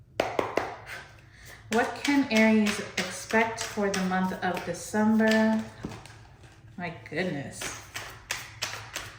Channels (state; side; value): identical; both; correlation 1.00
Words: What can Aries expect for the month of December? My goodness.